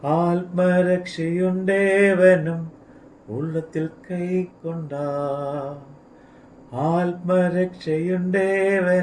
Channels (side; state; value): both; identical; correlation 1.00